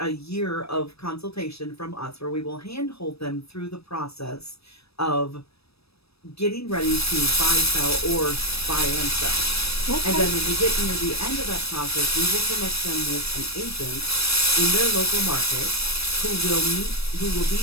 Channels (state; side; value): late; right; 0.78 ms